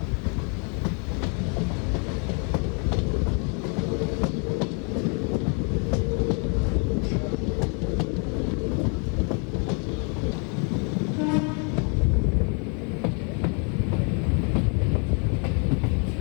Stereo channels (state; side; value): quieter; right; 37.3 dB